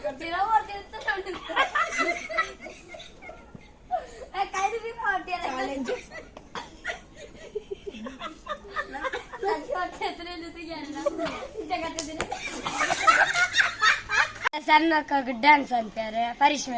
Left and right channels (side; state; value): both; identical; correlation 1.00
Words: ಸಣ್ಣ ಡ್ಯಾನ್ಸ್ ಅಂತಾರೆ